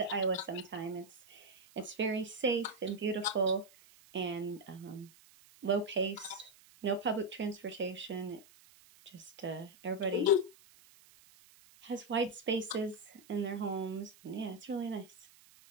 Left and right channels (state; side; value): noise; right; hiss, 25 dB below the sound